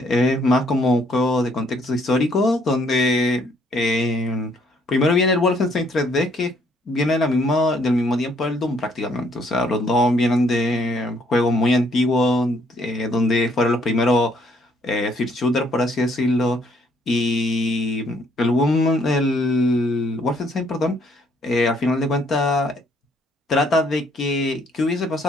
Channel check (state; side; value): normal; both; correlation 0.67